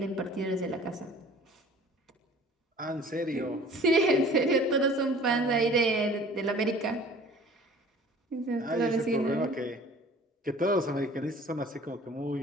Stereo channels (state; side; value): normal; both; correlation 0.49